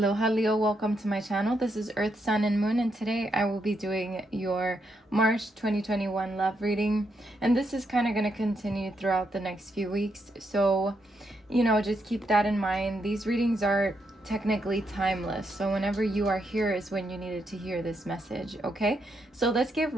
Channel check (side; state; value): both; normal; correlation 0.80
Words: Leo, welcome to my channel. This is Earth, Sun, and Moon, and today I will be doing your March 2021 love reading. And this is kind of going to continue throughout the next few weeks. So, just keep that in mind. These readings are technically timeless. So whenever you are here is when you needed to hear this message, okay? So let's get